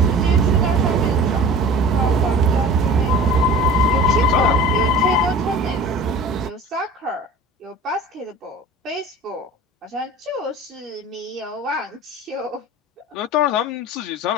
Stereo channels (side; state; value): both; normal; correlation 0.40